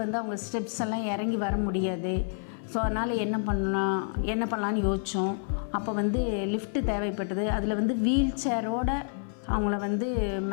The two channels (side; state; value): right; silent; 59 dB below the other